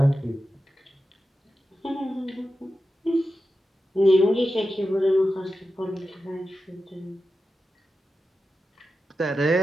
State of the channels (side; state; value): both; normal; correlation 0.91